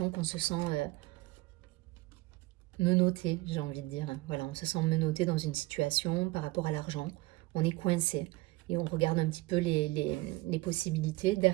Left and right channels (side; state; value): left; quieter; 20.7 dB